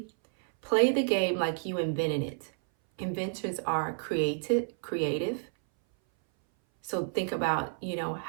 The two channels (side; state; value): left; silent; 58 dB below the other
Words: Play the game like you invented it. Inventors are creative. So think about,